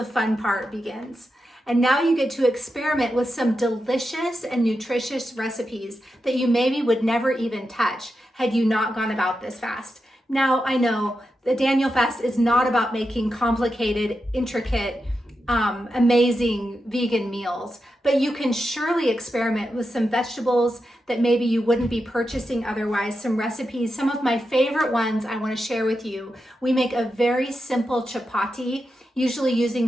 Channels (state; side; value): normal; both; correlation 0.88